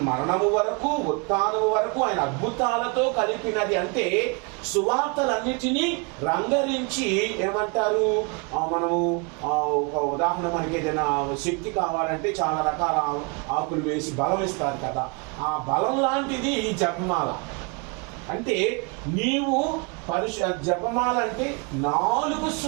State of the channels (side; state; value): left; quieter; 30.7 dB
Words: మరణము వరకు, ఉత్థానము వరకు ఆయన అద్భుతాలతో కలిపినది. అంటే సువార్తలన్నిటినీ రంగరించి ఏమంటారు, మనము ఒక ఉదాహరణ, మనకి ఏదైనా శక్తి కావాలంటే చాలా రకాల ఆకులు వేసి బలం ఇస్తారు కదా, ఆ బలం లాంటిది ఈ జపమాల. అంటే నీవు జపమాల అంటే 4